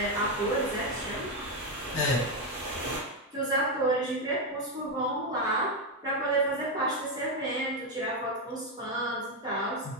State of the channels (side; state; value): both; normal; correlation 0.06